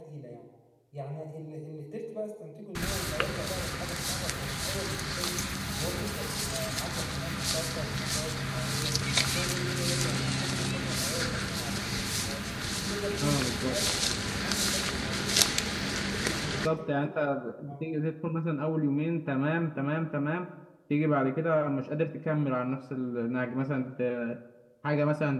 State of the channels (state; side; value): identical; both; correlation 1.00